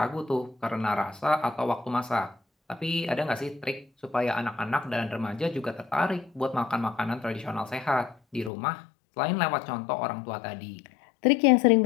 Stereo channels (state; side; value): drops out; right; at 8.5 s